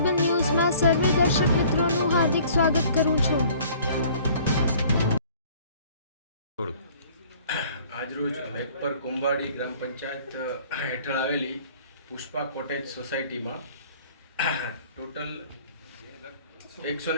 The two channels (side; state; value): both; inverted; correlation -0.53